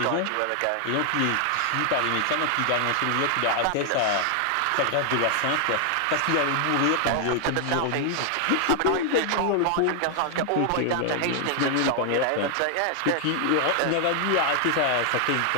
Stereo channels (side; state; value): both; different; correlation 0.00